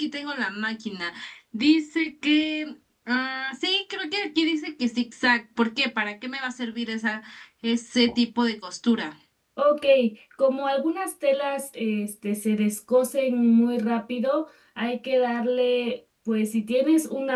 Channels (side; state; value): both; identical; correlation 1.00